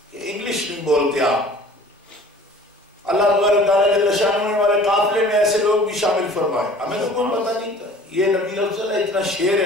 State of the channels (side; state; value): both; normal; correlation 0.48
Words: کہ انگلش نہیں بولتے آپ. اللہ تبارک تعالیٰ جل شانہ نے ہمارے قافلے میں ایسے لوگ بھی شامل فرمائے, ہمیں تو کوئی پتہ نہیں تھا. یہ نبی افضل ہے, اتنا شیر